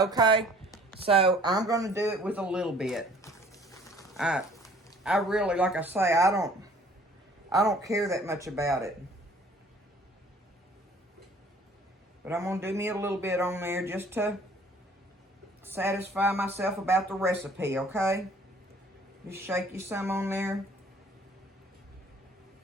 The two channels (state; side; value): normal; both; correlation 0.55